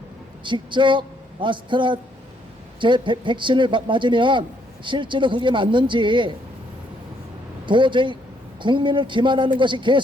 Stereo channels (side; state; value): both; normal; correlation 0.71